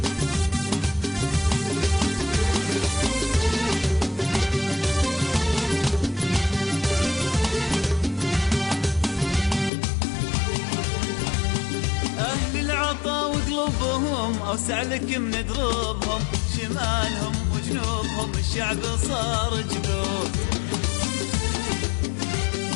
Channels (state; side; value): drops out; right; at 9.7 s